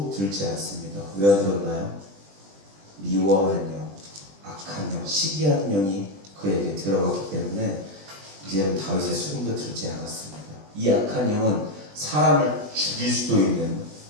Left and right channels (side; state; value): left; late; 20 ms